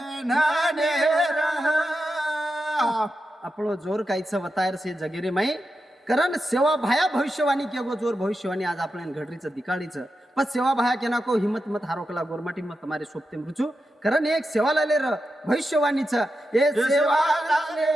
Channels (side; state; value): both; normal; correlation 0.89